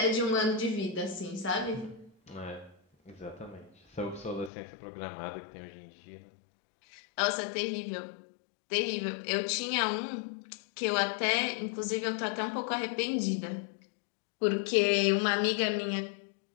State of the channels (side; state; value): right; drops out; at 4.5 s